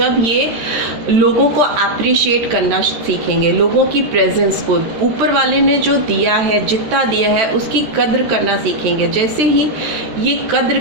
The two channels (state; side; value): late; left; 13 ms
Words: ये लोगों को अप्रिशिएट करना सीखेंगे, लोगों की प्रेजेंस को, ऊपर वाले ने जो दिया है, जितना दिया है उसकी कद्र करना सीखेंगे। जैसे ही ये कद्र